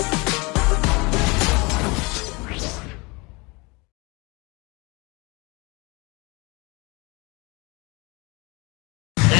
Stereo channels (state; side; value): quieter; right; 26.6 dB